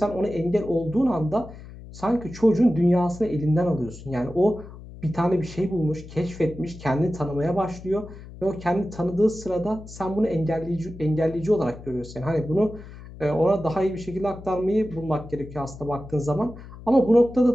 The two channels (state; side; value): noise; left; hum, 16 dB below the sound